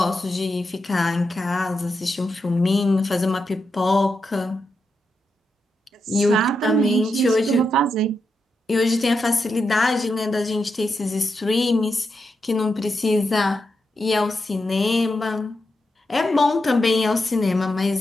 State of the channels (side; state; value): both; normal; correlation 0.86